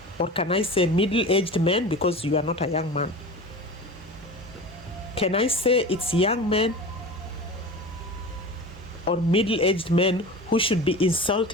or can I say middle-aged men, because you are not a young man? Can I say it's young men or middle-aged men who should be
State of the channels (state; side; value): normal; both; correlation 0.33